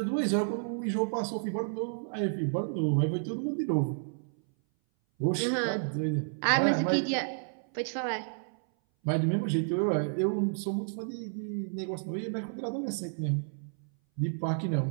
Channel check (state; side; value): silent; left; 57 dB below the other